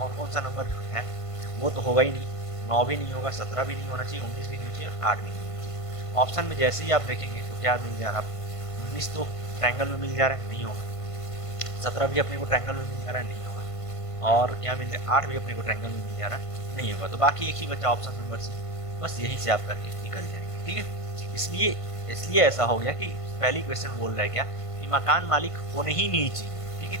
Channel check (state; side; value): late; right; 1.5 ms